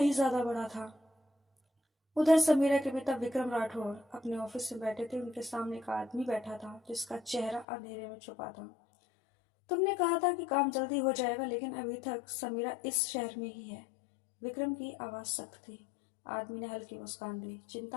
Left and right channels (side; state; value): right; drops out; at 7.7 s